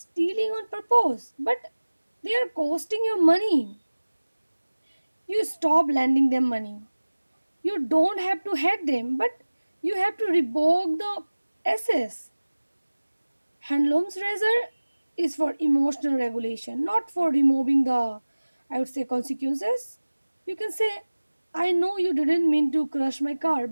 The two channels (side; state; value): both; inverted; correlation -1.00